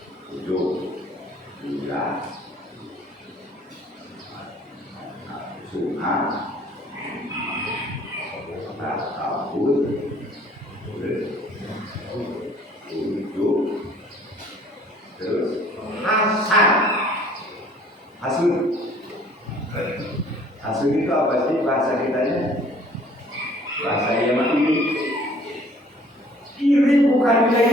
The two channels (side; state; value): both; normal; correlation 0.55